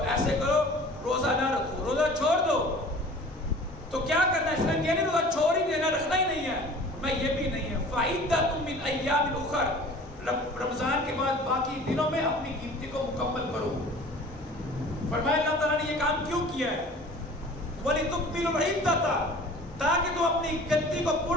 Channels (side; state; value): both; normal; correlation 0.45